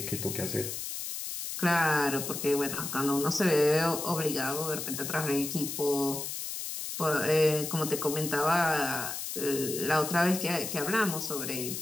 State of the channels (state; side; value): noise; left; hiss, 5 dB below the sound